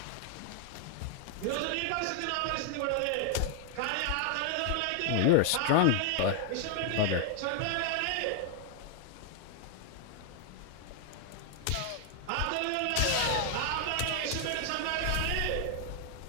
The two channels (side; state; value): both; different; correlation 0.00